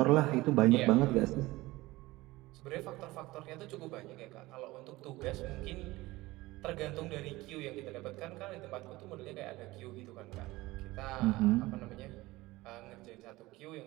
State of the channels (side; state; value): left; quieter; 19.5 dB